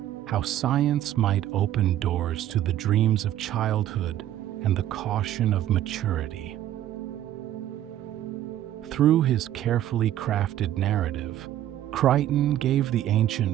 how science might open doors to the dreams of childhood and the caution of maturity. Through his carefully crafted narrative, Crichton gave the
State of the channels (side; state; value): left; quieter; 12.4 dB